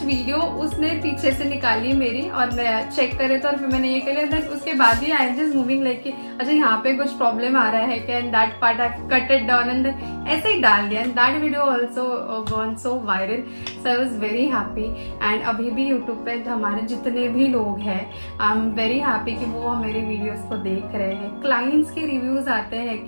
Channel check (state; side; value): inverted; both; correlation -1.00